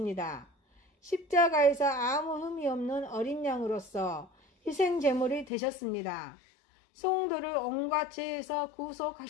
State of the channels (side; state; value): right; drops out; at 5.5 s